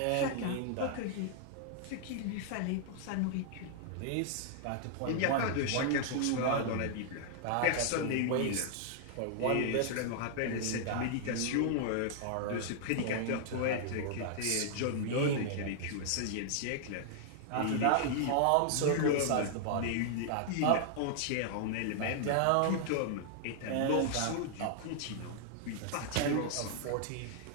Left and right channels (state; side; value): different; both; correlation -0.01